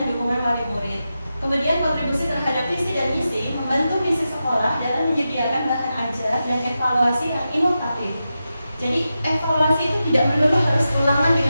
dukungan wali murid. Kemudian kontribusi terhadap visi dan misi, membantu misi sekolah dalam menyediakan bahan ajar dan evaluasi yang inovatif. Jadi evaluasi itu tidak melulu harus ulangan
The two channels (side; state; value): both; inverted; correlation -0.90